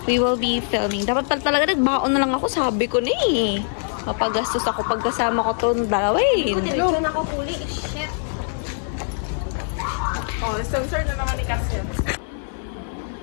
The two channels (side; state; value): right; silent; digital silence